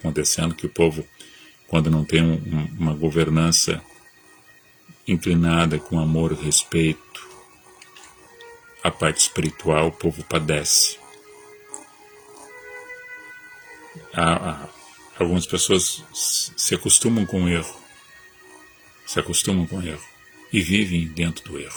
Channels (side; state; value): both; identical; correlation 1.00